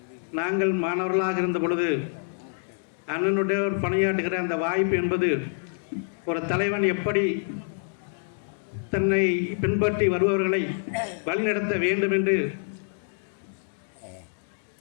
நாங்கள் மாணவர்களாக இருந்த பொழுது அண்ணனுடைய ஒரு பணியாற்றுகிற அந்த வாய்ப்பு என்பது ஒரு தலைவன் எப்படி தன்னை பின்பற்றி வருபவர்களை வழிநடத்த வேண்டும் என்று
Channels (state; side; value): silent; right; digital silence